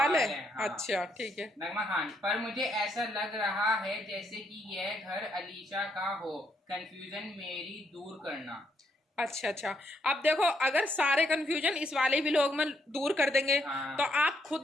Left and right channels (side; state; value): both; normal; correlation 0.75